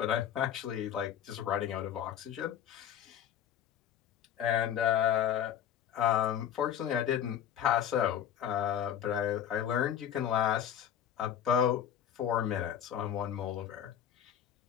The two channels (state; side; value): quieter; right; 9.8 dB